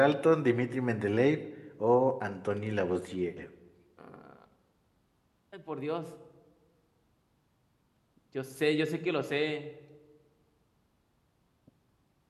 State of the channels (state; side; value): identical; both; correlation 1.00